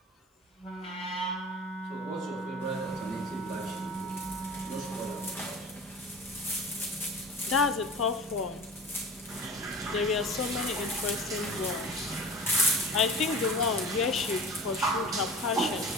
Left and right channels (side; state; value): both; normal; correlation 0.37